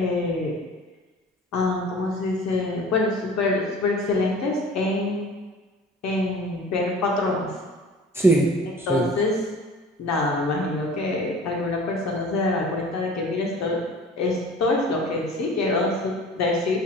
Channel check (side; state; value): both; normal; correlation 0.43